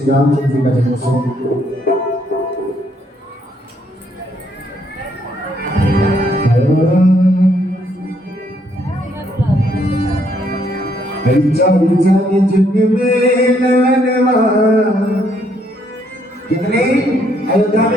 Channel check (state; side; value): normal; both; correlation 0.71